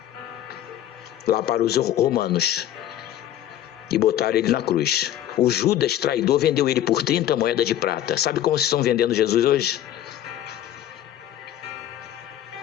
lá para os romanos e botaram ele na cruz. O Judas traidor vendeu ele por 30 moedas de prata. Sabe como vocês estão vendendo Jesus hoje?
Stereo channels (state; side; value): quieter; right; 11.8 dB